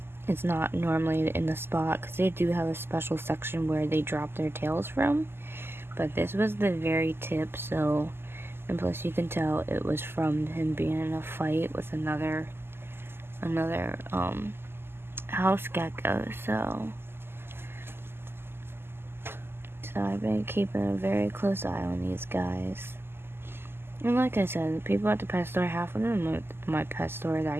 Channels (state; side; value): late; left; 0.11 ms